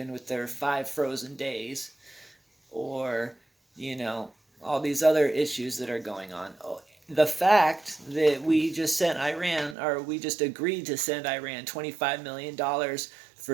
with their 5 frozen days, or, you know, all these other issues that are going on. The fact that we just sent Iran, or we just agreed to send Iran $25 million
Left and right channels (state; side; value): drops out; left; at 9.8 s